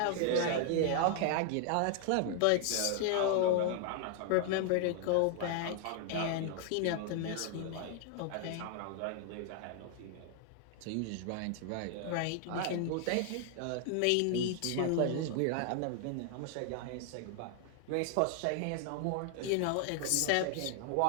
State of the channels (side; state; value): both; different; correlation 0.00